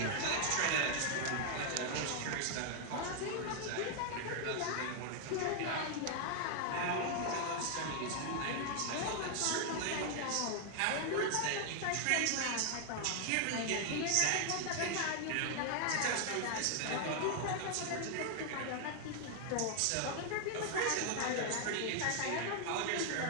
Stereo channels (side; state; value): both; different; correlation 0.00